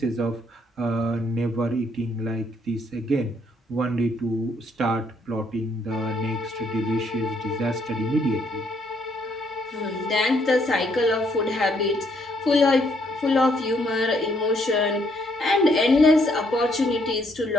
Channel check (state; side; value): normal; both; correlation 0.70